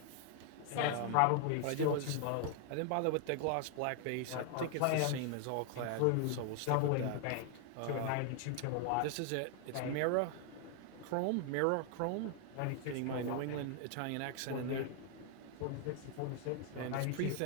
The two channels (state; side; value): different; both; correlation 0.00